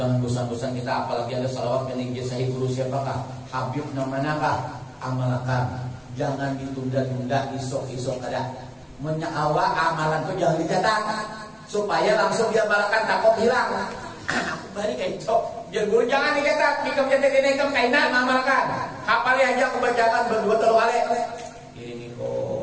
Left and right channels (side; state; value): both; identical; correlation 1.00